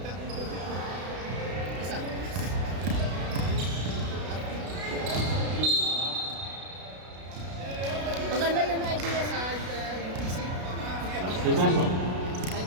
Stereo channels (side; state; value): left; late; 33 ms